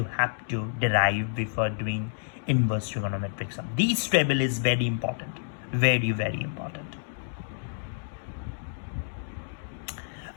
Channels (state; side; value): silent; right; digital silence